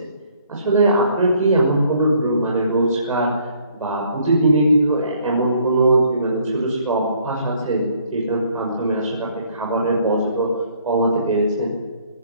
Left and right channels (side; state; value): both; inverted; correlation -0.63